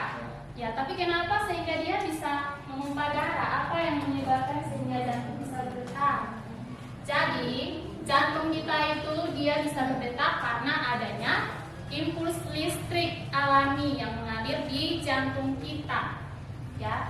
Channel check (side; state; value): both; identical; correlation 1.00